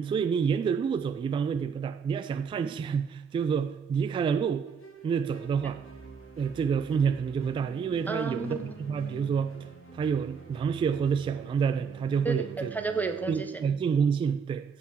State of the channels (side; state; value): left; quieter; 6.2 dB